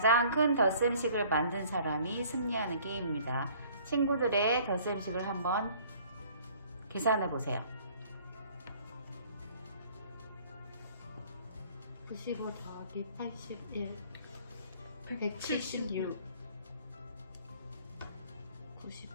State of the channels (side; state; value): both; inverted; correlation -0.55